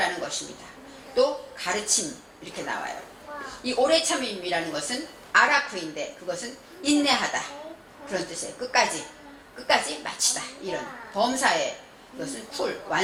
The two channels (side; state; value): both; identical; correlation 1.00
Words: 것입니다. 또 가르침 이렇게 나와요. 이 오래 참음이라는 것은 아라쿠인데 그것은 인내하다 그런 뜻이에요. 끝까지 마치다 이런 범사에 이것은